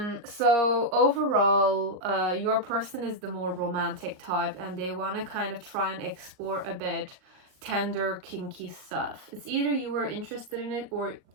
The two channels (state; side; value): late; left; 38 ms